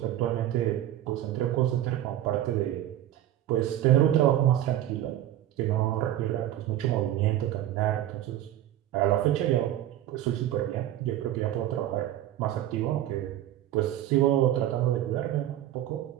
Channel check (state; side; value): quieter; left; 12.8 dB